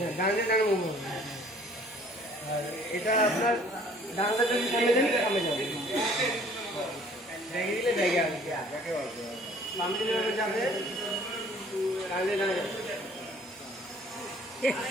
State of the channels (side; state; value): both; normal; correlation 0.55